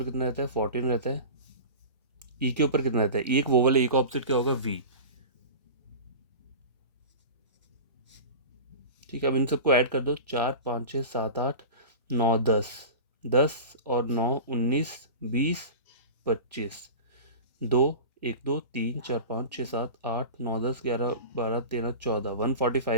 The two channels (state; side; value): inverted; both; correlation -0.31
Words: कितना रहता है 14 रहता है। ई के ऊपर कितना रहता है, ई एक वोवल है, ई का ऑपोजिट क्या होगा वी, ठीक है। अब इन सबको ऐड कर दो, 4 5 6 7 8 9 10, 10 और 9 19 20 25, 2 1 2 3 4 5 6 7 8 9 10 11 12 13 14,